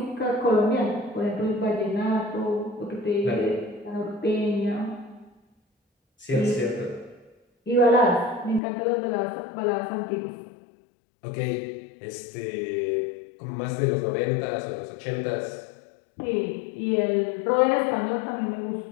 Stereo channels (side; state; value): right; drops out; at 8.6 s